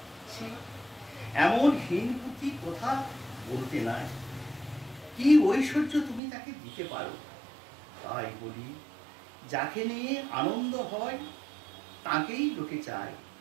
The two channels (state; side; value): drops out; left; at 6.2 s